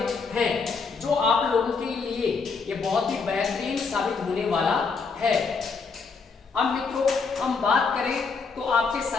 हैं, जो आप लोगों के लिए ये बहुत ही बेहतरीन साबित होने वाला है। अब मित्रों हम बात करें तो आपके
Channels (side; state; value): right; quieter; 4.9 dB